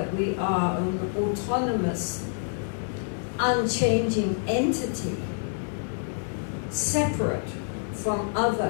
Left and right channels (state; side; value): silent; right; digital silence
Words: we are an autonomous, unchanging entity, separate from